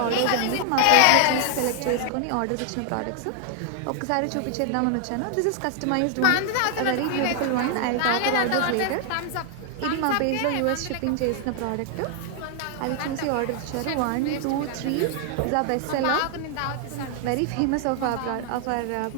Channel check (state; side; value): different; both; correlation 0.00